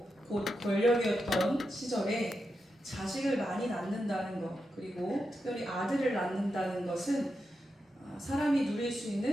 곧 권력이었던 시절에 자식을 많이 낳는다는 것, 그리고 특별히 아들을 낳는다는 것은 사람이 누릴 수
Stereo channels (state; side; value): normal; both; correlation 0.88